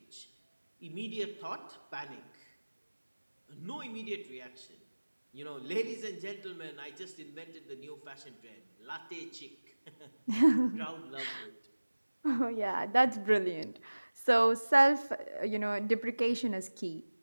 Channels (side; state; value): both; inverted; correlation -1.00